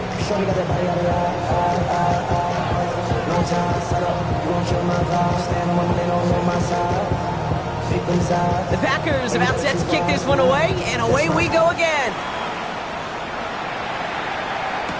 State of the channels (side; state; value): both; identical; correlation 1.00